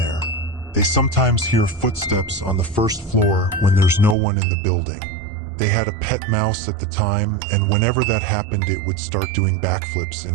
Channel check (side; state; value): left; drops out; at 4.2 s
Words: They sometimes hear footsteps on the first floor when there's no one in the building. They had a pet mouse at the time, and whenever that happened it would start doing backflips in